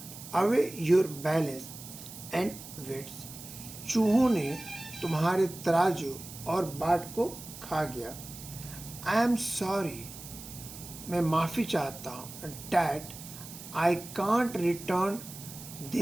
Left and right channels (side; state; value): right; noise; hiss, 13 dB below the sound